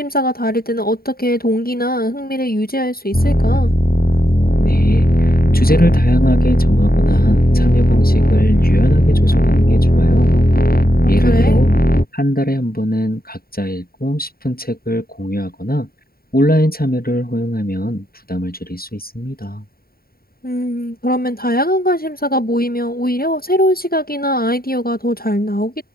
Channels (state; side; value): late; right; 0.43 ms